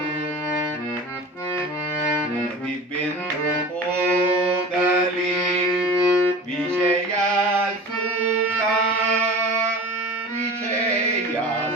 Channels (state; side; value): normal; both; correlation 0.36